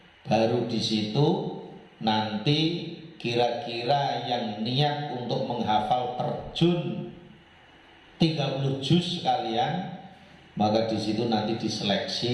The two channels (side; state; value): both; identical; correlation 1.00